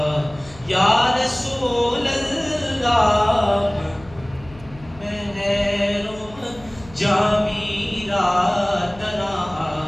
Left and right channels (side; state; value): left; noise; hum, 21 dB below the sound